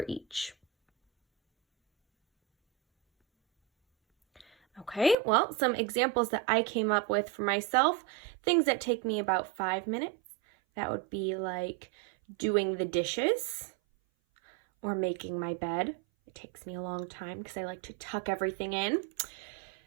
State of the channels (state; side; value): drops out; left; at 5.2 s